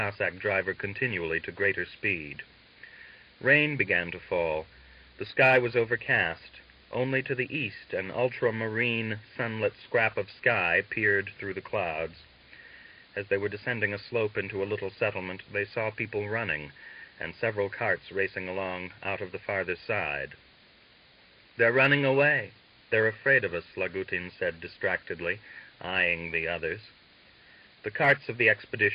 driver continually to greater speed. Rain began to fall. The sky was overcast. Only to the east an ultramarine, sunlit scrap of sky peered through the clouds. As they were descending a slope into a little settlement, they saw people running, and several carts racing along out of the farther side. "They're running away. They're afraid of us," Lagutin said distractedly, eyeing the others. The carts of the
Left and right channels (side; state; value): both; identical; correlation 1.00